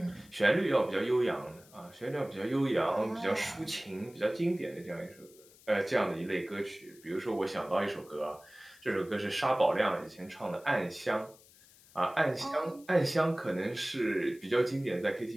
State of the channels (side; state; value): left; noise; hiss, 25 dB below the sound